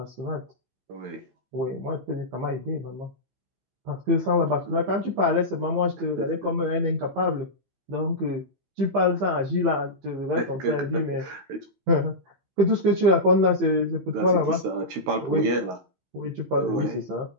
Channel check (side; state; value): left; late; 16 ms